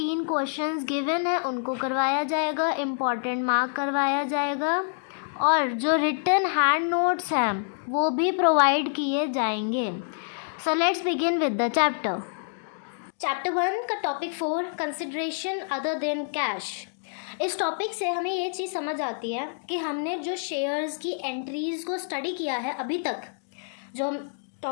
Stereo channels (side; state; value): right; silent; digital silence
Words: क्वेश्चंस गिवन है उनको करवाया जाएगा, इम्पॉर्टेंट मार्क करवाया जाएगा और जो रिटन हैंड नोट्स हैं वो भी प्रोवाइड किए जाएंगे। So let's begin with the chapter 1 का topic 4 consideration other than cash. इस टॉपिक से हमें ये चीज़ समझ आती है कि हमने जो शेयर्स की एंट्रीज़ को स्टडी किया है अभी तक, जो हम